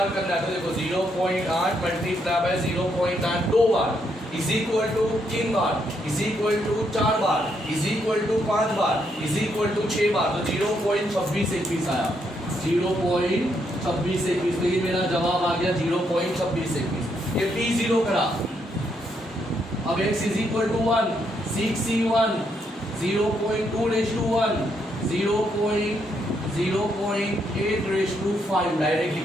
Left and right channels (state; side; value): normal; both; correlation 0.76